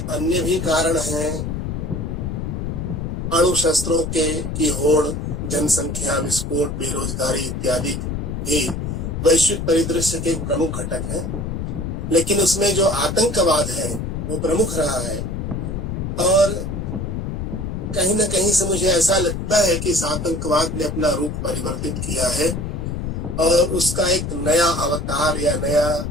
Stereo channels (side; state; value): left; noise; rumble, 4 dB below the sound